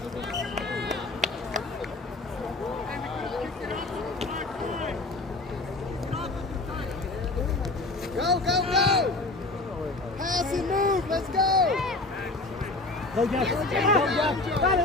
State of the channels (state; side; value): quieter; right; 3.1 dB